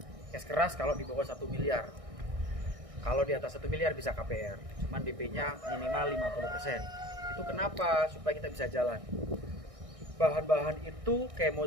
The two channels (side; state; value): left; late; 1.6 ms